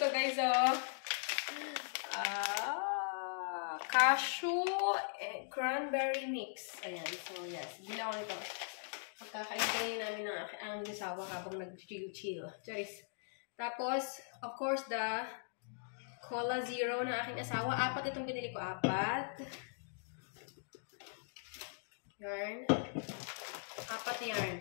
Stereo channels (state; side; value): silent; right; digital silence